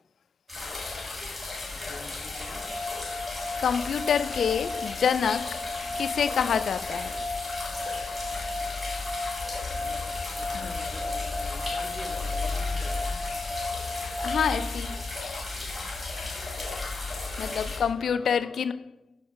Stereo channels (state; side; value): quieter; right; 4.7 dB